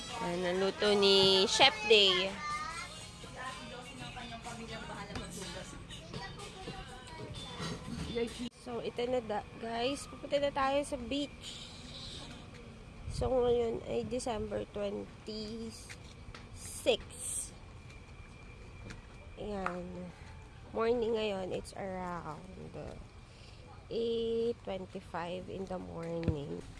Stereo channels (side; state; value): both; identical; correlation 1.00